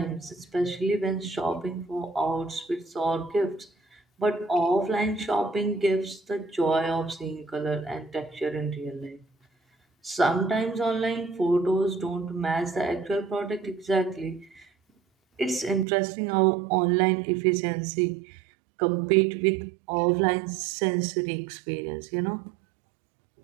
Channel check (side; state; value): left; drops out; at 15.9 s